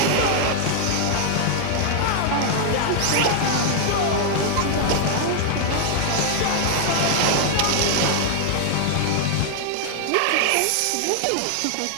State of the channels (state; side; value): different; both; correlation 0.00